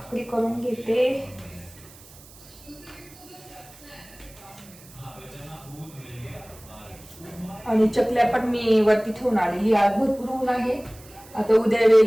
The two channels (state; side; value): noise; right; hiss, 22 dB below the sound